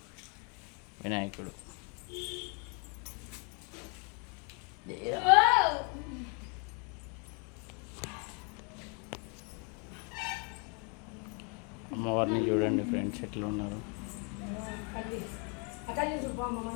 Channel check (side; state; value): right; quieter; 35.3 dB